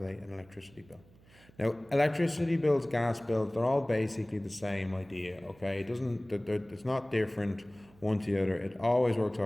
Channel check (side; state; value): right; noise; hum, 27 dB below the sound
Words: an electricity bill. Now electricity bills, gas bills, they're all basically the same idea, okay? It's not different one to the other, it always works